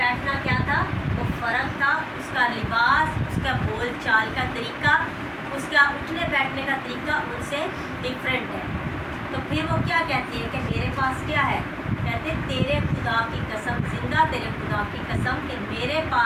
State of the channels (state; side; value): identical; both; correlation 1.00